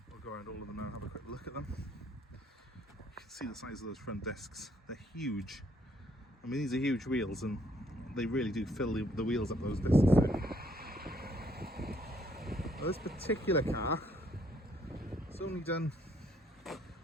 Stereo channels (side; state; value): both; normal; correlation 0.67